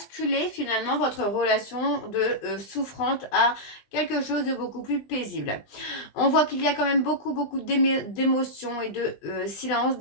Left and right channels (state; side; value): late; right; 20 ms